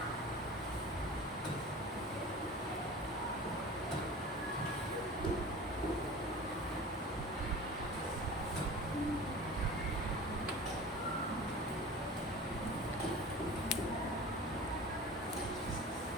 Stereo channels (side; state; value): both; normal; correlation 0.38